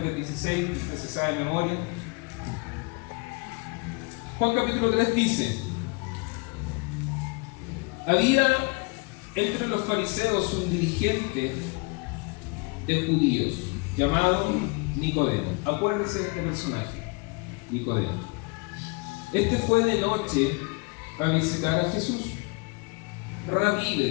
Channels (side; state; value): right; quieter; 29.1 dB